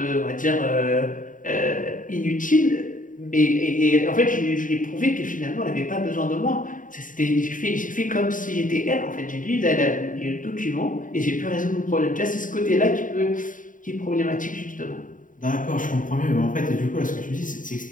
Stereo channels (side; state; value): right; late; 0.38 ms